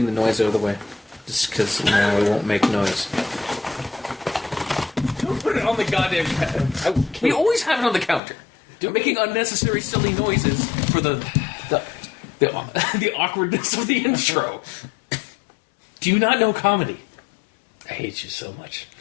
noise out of the way. Just because now I won't make noise. Don't put it on the goddamn counter. We always have it on the counter. You're making unnecessary silly noises for the awkwardness of the intro. Do you not know comedy? I hate you so much.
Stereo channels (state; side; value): drops out; right; at 8.2 s